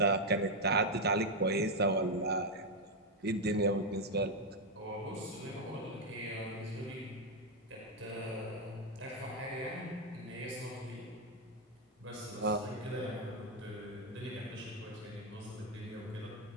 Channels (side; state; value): both; normal; correlation 0.02